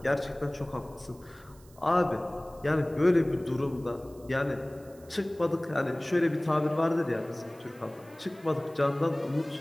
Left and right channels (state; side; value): noise; right; hiss, 26 dB below the sound